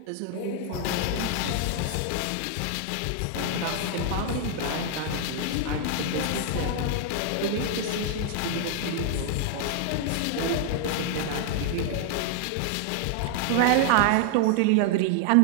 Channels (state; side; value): different; both; correlation 0.00